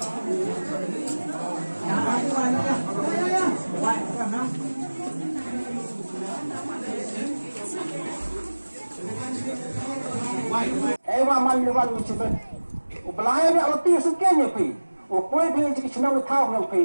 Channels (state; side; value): inverted; both; correlation -1.00